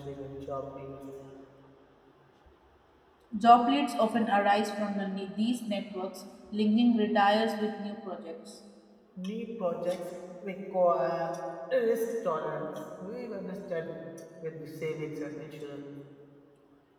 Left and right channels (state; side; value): identical; both; correlation 1.00